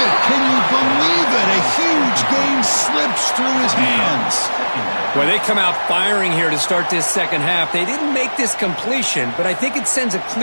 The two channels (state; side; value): inverted; both; correlation -1.00